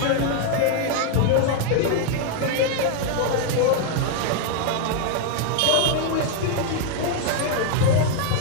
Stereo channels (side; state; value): both; different; correlation 0.00